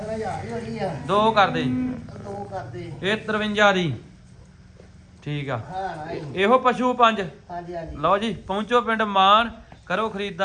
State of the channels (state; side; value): identical; both; correlation 1.00